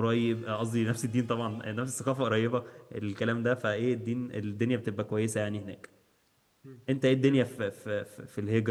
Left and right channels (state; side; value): identical; both; correlation 1.00